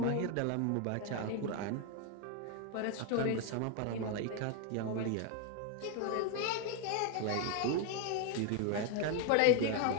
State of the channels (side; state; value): both; different; correlation 0.01